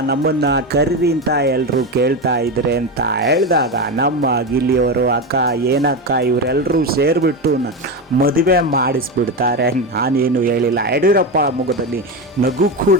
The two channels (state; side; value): normal; both; correlation 0.16